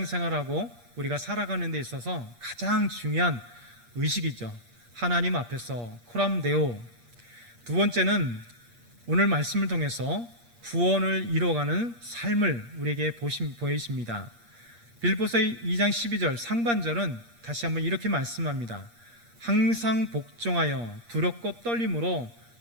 우리가 살아가는 데 있어서 가장 중요한 의식이죠. 하나님 앞에서 코람데오. 두 번째는 오늘 말씀을 통해서 구원을 이루어가는 삶을 우리에게 보이십니다. 빌립보서 2장 12절 상반절은 다시 한번 이렇게 말씀합니다. 항상 복종하여 두렵고 떨림으로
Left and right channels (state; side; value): late; left; 8.5 ms